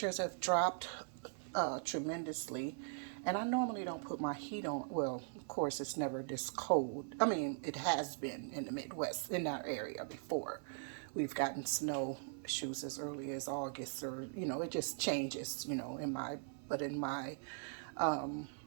have dropped tremendously, and I normally don't put my heat on. Well, of course it's never this cold. I mean, it has been in the Midwest in our area before. We've gotten snow shoes as early as August, or it just changes. In my but in my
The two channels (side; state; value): left; silent; 51 dB below the other